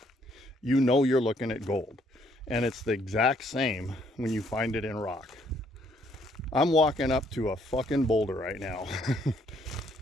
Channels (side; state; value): both; normal; correlation 0.68